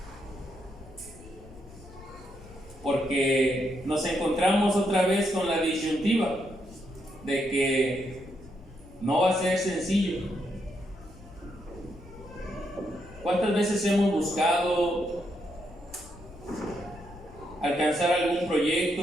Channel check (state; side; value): noise; left; rumble, 19 dB below the sound